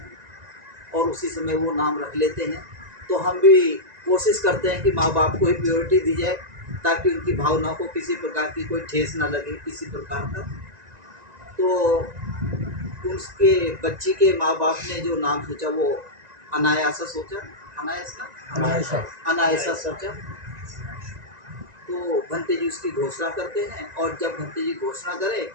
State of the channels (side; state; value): left; late; 1.9 ms